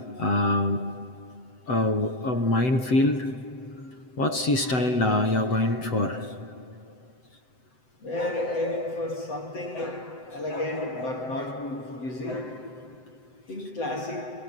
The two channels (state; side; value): late; right; 7.8 ms